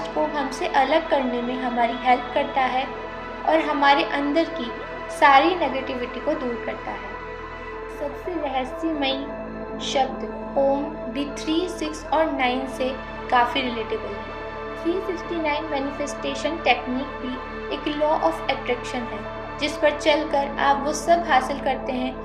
को हमसे अलग करने में हमारी हेल्प करता है और हमारे अंदर की सारी नेगेटिविटी को दूर करता है। सबसे रहस्यमयी शब्द ओम भी 3, 6 और 9 से काफ़ी रिलेटेबल है। 369 मैनिफेस्टेशन टेक्निक भी एक लॉ ऑफ अट्रैक्शन है जिस पर चलकर आप वो सब हासिल करते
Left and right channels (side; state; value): both; identical; correlation 1.00